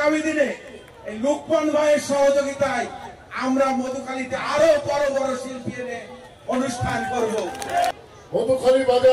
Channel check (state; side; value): identical; both; correlation 1.00